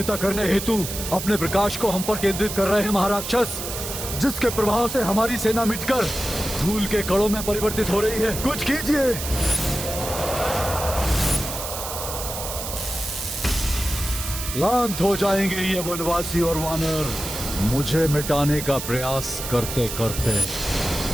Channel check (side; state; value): right; noise; hiss, 6 dB below the sound